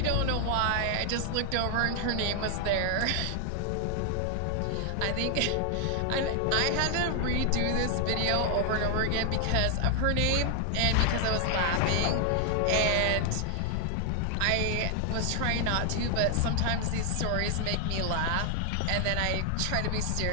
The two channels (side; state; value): both; different; correlation 0.00